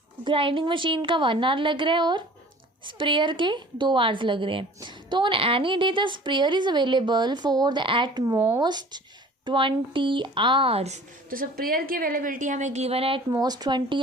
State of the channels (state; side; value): normal; both; correlation 0.46